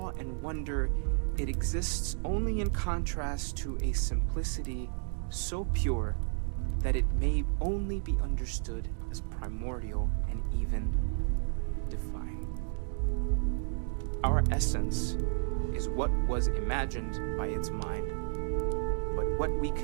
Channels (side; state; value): left; silent; 56 dB below the other